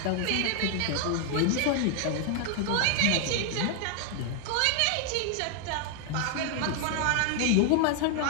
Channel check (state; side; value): different; both; correlation 0.00